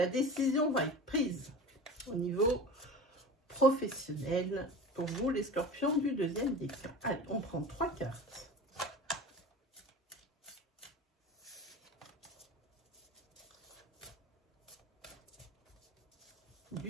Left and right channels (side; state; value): both; normal; correlation 0.34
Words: décision va être prise au niveau professionnel pour vous les scorpions du deuxième décan. Allez, on prend 3 cartes.